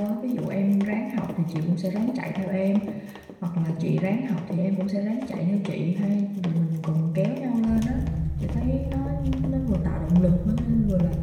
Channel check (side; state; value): both; identical; correlation 1.00